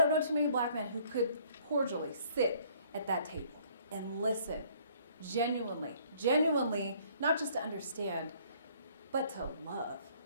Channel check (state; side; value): inverted; both; correlation -0.60